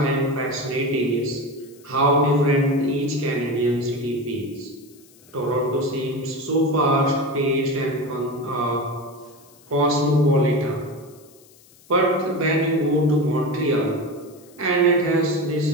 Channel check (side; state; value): left; noise; hiss, 27 dB below the sound